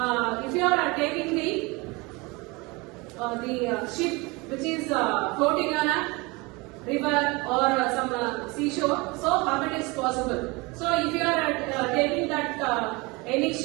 If you are taking the ship which is floating on a river or some seashore, so how it is possible? So if you are taking that any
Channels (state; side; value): quieter; left; 25.6 dB